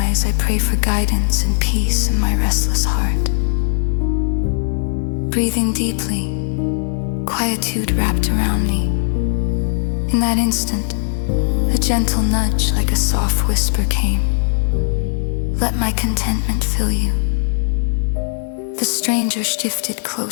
I pray for guidance and peace in my restless heart. Breathing deeply, quietude wrapped around me. In that instant, a gentle nudge like a soft whisper came. Let my contentment fill you. The stranger shifted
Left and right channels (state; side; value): silent; right; 56 dB below the other